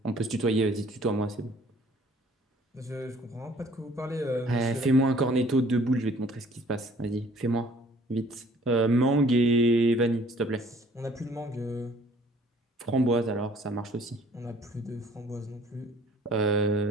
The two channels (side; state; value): both; normal; correlation 0.56